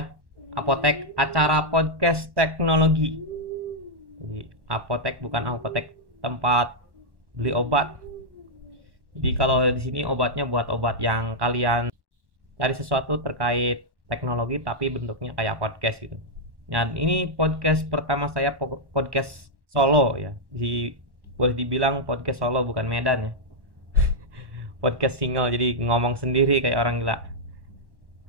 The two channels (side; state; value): left; late; 1.1 ms